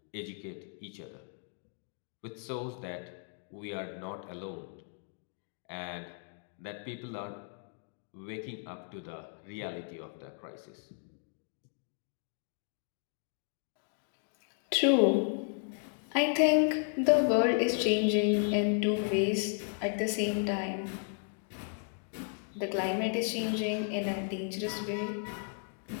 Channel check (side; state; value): right; silent; 55 dB below the other